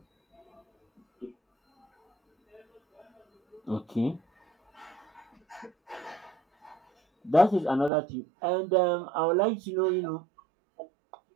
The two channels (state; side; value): drops out; left; at 7.9 s